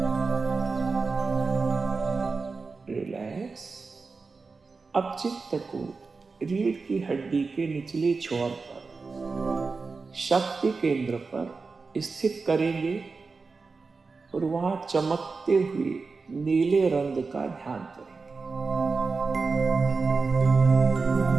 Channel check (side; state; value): left; quieter; 4.3 dB